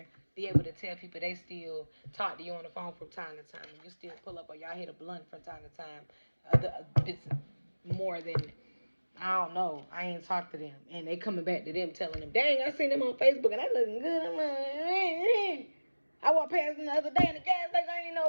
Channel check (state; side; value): inverted; both; correlation -1.00